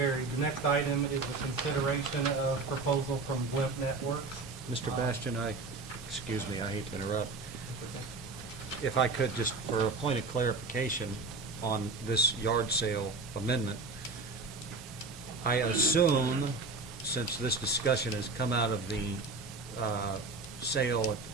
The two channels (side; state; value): left; quieter; 3.7 dB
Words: The next item is the consideration of proposal from Blimp Networks. Mr. Bastian, excuse me, I hate to interrupt. That's okay. If I could, just for a point of clarification on this yard sale amendment, I assume, since this discussion has come out of the sale at the